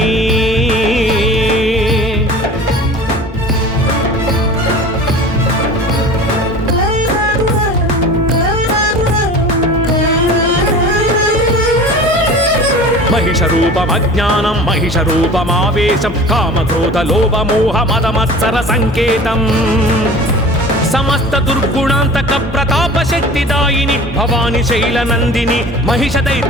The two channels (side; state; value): both; normal; correlation 0.39